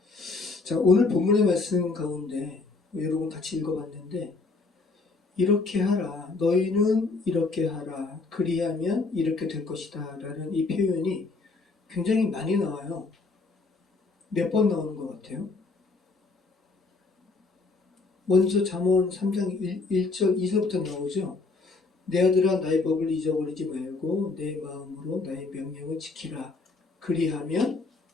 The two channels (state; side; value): quieter; right; 3.9 dB